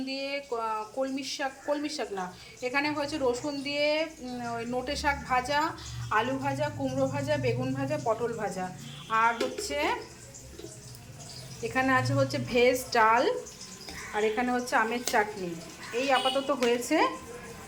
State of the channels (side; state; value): both; identical; correlation 1.00